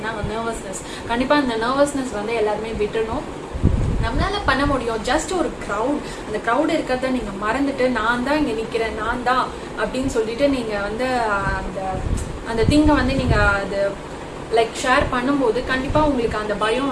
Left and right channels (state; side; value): identical; both; correlation 1.00